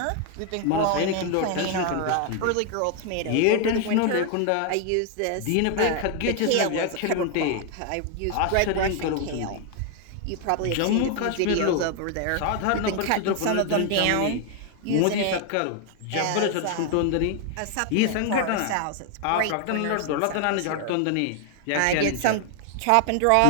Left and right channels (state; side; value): different; both; correlation 0.00